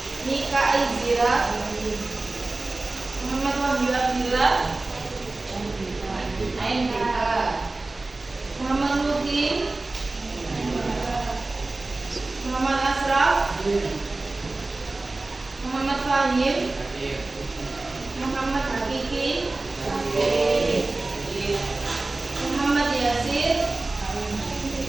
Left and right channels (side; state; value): left; quieter; 3.2 dB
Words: Nika Aizira Muhammad Wahyu Abdillah Aindika Muhammad Lukin Muhammad Asraf Muhammad Fahim Muhammad Hakiki Muhammad Yasir